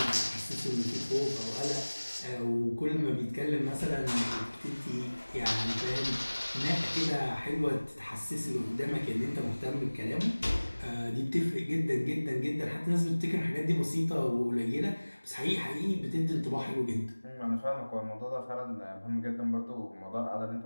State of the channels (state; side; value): inverted; both; correlation -1.00